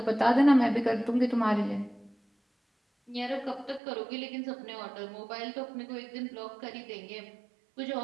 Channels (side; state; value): left; drops out; at 3.8 s